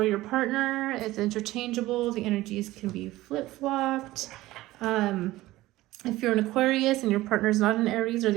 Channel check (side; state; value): left; quieter; 17.3 dB